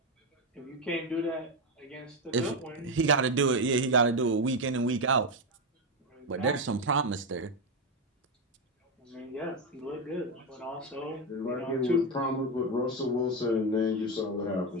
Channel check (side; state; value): both; normal; correlation 0.09